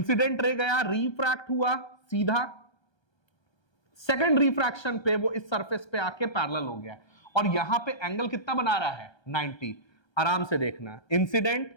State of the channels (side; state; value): right; late; 1.3 ms